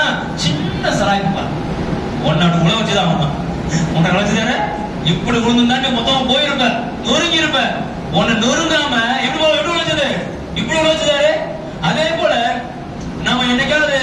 சின்ன சராய்ப்பா ஒன்னாடு உழ வச்சுதான் உன்னை வச்சுதானே. இப்படி விழுந்தா நீ மொத்தமா போயிருப்ப, நொறுங்கி இருப்ப. உன்னை நொறுங்காம எப்படி விழுச்சது? இப்படி விழுச்சதாரு. அதே போல நம்ம என்னைக்காவது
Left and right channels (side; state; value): both; identical; correlation 1.00